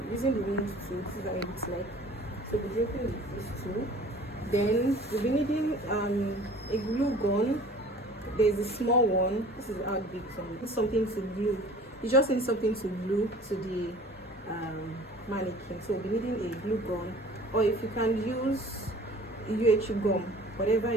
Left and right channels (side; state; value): both; normal; correlation 0.47